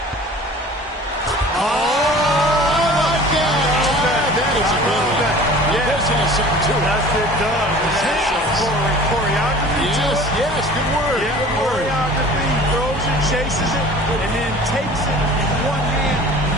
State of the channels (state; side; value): normal; both; correlation 0.44